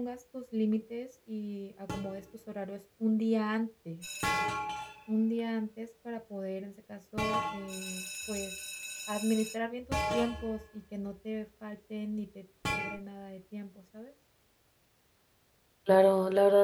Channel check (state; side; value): identical; both; correlation 1.00